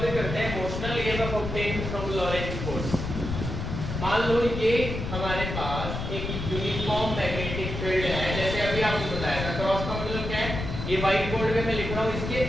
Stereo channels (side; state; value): left; noise; rumble, 5 dB below the sound